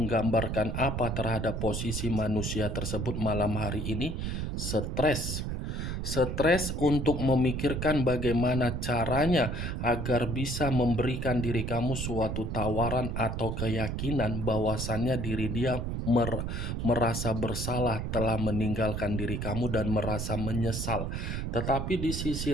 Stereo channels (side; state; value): right; noise; rumble, 3 dB below the sound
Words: apa terhadap posisi manusia tersebut malam hari ini? Stres. Stres untuk memikirkan bagaimana caranya agar bisa memberikan diri kamu suatu tawaran atau keyakinan bahwasannya diri dia merasa bersalah telah meninggalkan diri kamu dan merasa menyesal. Tetapi di sisi